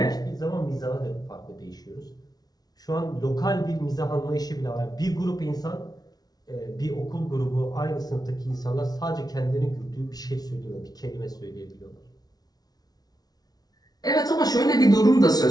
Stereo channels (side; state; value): right; late; 0.19 ms